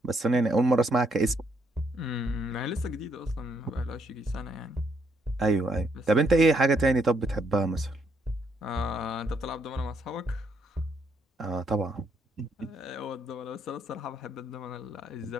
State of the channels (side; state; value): both; normal; correlation 0.72